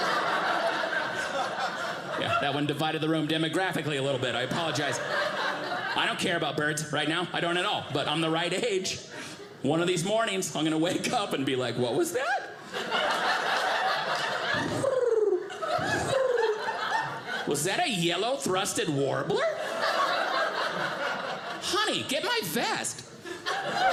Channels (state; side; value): identical; both; correlation 1.00